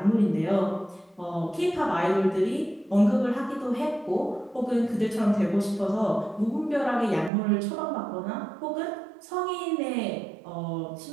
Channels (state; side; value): drops out; left; at 7.3 s